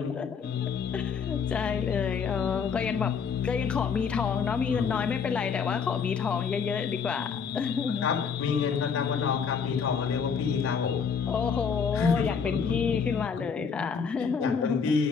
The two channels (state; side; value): quieter; right; 6.2 dB